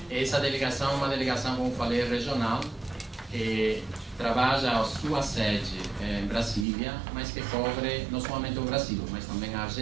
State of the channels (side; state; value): left; drops out; at 6.7 s